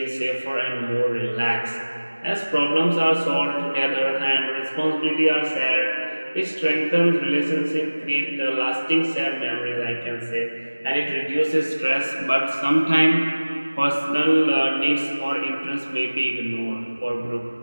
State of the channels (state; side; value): inverted; both; correlation -1.00